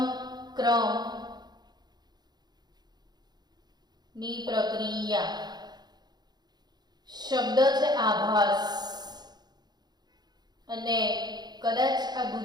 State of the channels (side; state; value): left; late; 0.20 ms